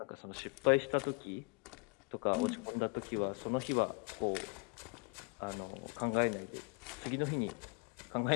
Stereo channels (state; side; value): quieter; right; 33.5 dB